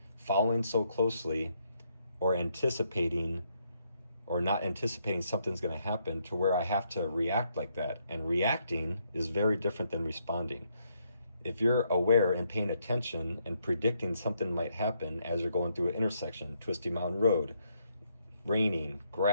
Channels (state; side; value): inverted; both; correlation -0.75